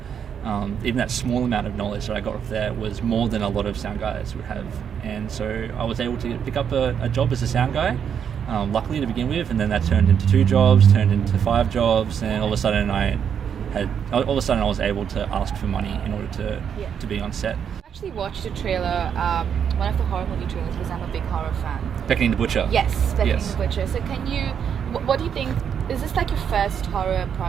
even that small amount of knowledge that I got off there was more than a lot of sound guys would have. And so I was able to pick up a job as a sound guy, luckily to begin with, and then that turned into 2 jobs, turned into 5 jobs, and all of a sudden I was able to ask for money in order to be on set. I actually watched a trailer, one of the horror movie trailers, because I'm a big horror fan. Beckoning the Butcher. Yes, Beckoning Yes. the Butcher. So can you, what do you think, is this like your first horror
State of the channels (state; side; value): quieter; left; 7.9 dB